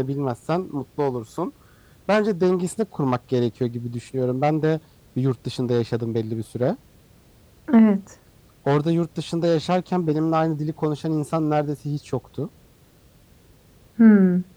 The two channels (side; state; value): both; identical; correlation 1.00